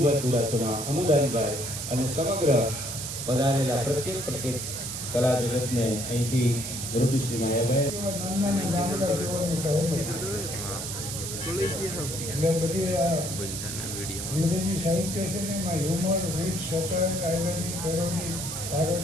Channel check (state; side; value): noise; right; hiss, 5 dB below the sound